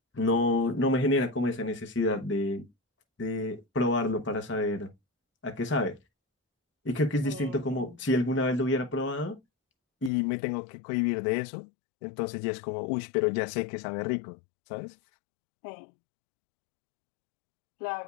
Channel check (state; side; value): drops out; right; at 10.1 s